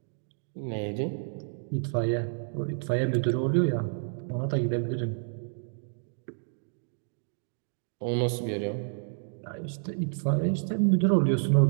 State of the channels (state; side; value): silent; left; digital silence